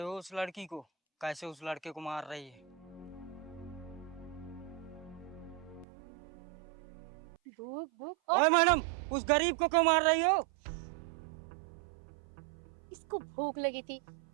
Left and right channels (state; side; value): drops out; left; at 5.9 s